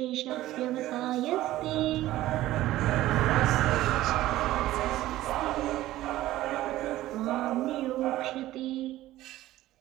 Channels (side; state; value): left; quieter; 15.4 dB